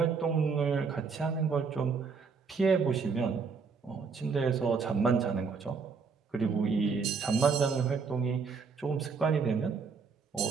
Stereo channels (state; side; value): quieter; left; 5.3 dB